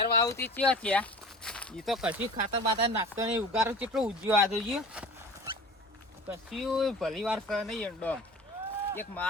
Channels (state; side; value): normal; both; correlation 0.40